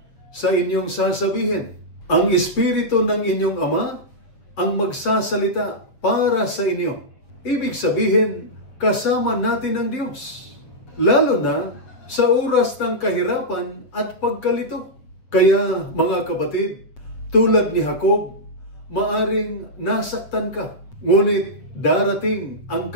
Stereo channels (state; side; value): late; right; 7.5 ms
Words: sa inyong sasabihin. Ang Espiritu ng inyong Ama ang magsasalita para sa inyo." Ibig sabihin, kasama natin ang Diyos, lalo na sa oras ng kahirapan at pagkalito. Kaya mga kapatid, tulad ni Jacob, maaring nasaktan ka, ngunit darating ang